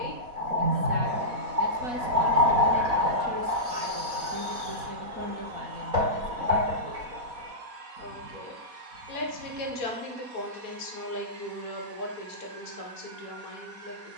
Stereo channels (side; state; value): left; late; 4.1 ms